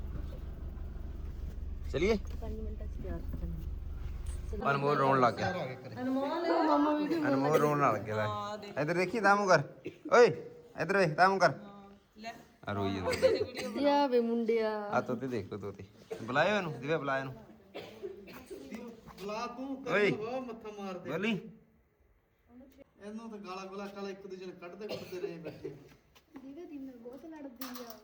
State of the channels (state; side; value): identical; both; correlation 1.00